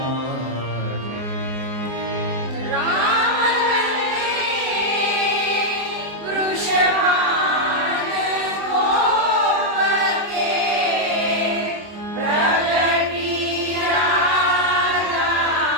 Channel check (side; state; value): left; late; 24 ms